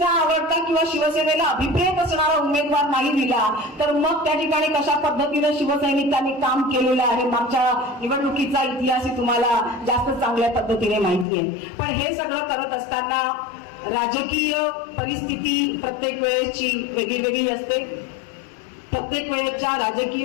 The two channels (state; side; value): drops out; right; at 11.2 s